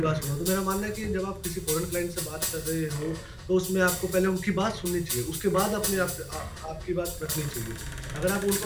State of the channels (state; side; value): identical; both; correlation 1.00